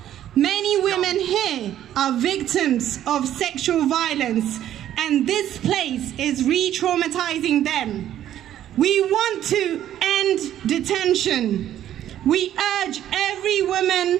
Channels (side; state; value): left; quieter; 11.6 dB